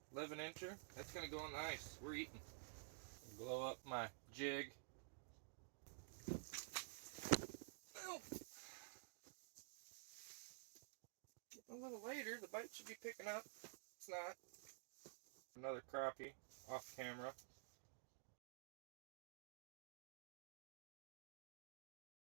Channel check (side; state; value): left; silent; digital silence